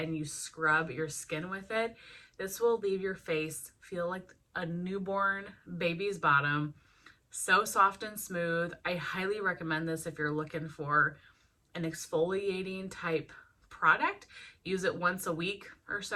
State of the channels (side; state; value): both; identical; correlation 1.00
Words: you scrub your skin with it. This will leave your face feel like a newborn baby's bottom. So soft and smooth. I highly recommend this if you're looking for an exfoliating type product. Use it once a week or